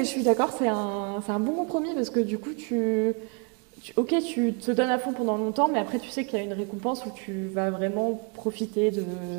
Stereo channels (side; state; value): left; quieter; 36.7 dB